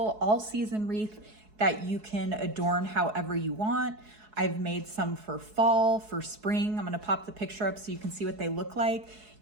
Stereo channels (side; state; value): left; late; 4.7 ms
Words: all-season wreath that you can adorn however you want. I've made some for fall, for spring. I'm going to pop the picture up so you can see what they look like.